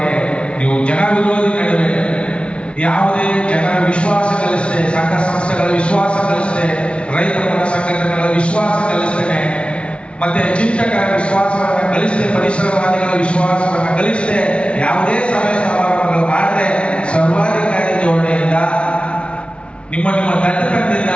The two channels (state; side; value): late; right; 0.059 ms